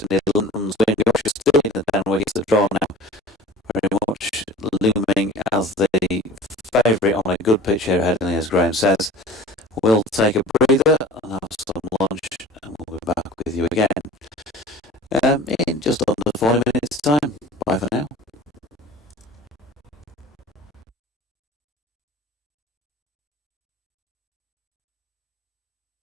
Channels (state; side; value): normal; both; correlation 0.41